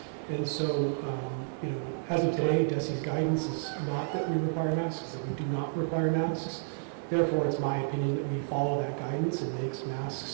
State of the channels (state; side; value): silent; left; digital silence